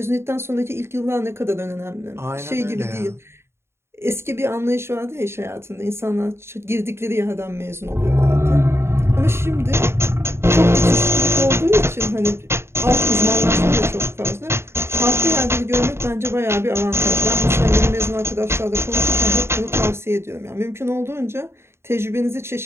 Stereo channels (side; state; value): left; late; 0.12 ms